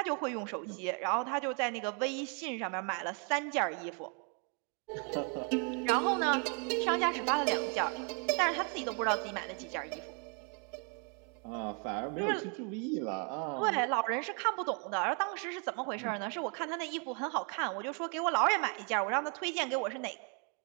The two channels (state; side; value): quieter; left; 38.3 dB